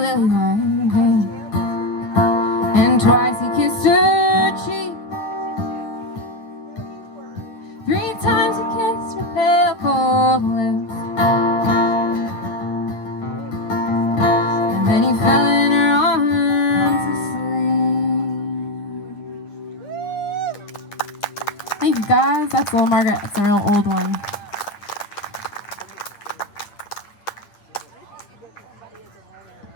white hand, and twice he kissed her cheek. 3 times he kissed her pale cold lips, and then he fell in her arms asleep. Thank you guys. That's Little Margaret. It's a real old one.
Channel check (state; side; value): late; right; 9.4 ms